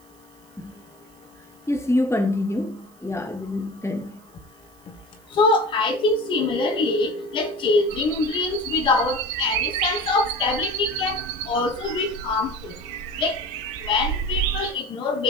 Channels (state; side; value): noise; right; hiss, 29 dB below the sound